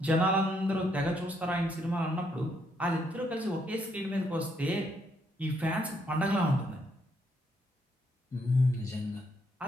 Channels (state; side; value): normal; both; correlation 0.73